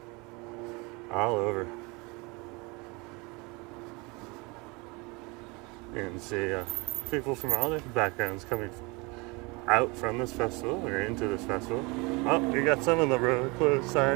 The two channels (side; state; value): left; quieter; 26.8 dB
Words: All over. You can see people from all different backgrounds coming out from this festival or into this festival. Oh, you got some of the road closed